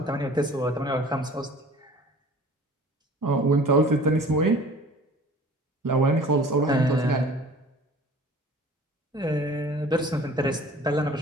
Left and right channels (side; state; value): both; normal; correlation 0.46